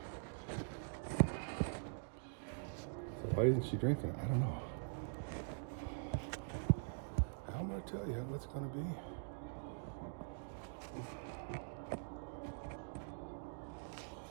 So why isn't she drinking it? I don't know. I'm gonna tell you what's gonna be.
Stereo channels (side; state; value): left; silent; digital silence